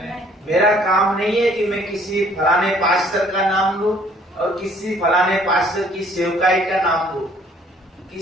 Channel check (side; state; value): both; normal; correlation 0.59